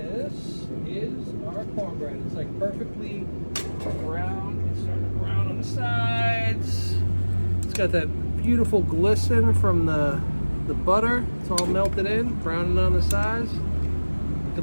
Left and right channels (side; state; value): both; inverted; correlation -1.00